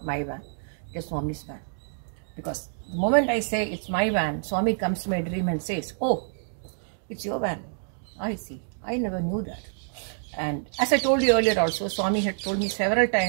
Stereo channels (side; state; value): left; silent; 60 dB below the other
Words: my van, it's Swami's van. Because the moment I say it's my van, Swami comes to my dream and says, "Oh, it's your van." I see. I never knew that. And as I told you earlier also, Swami had told me several